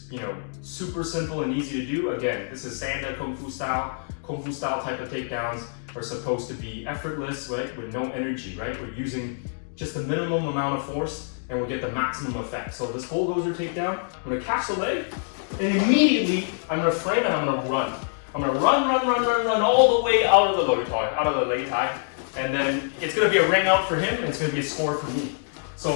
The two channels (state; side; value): silent; right; digital silence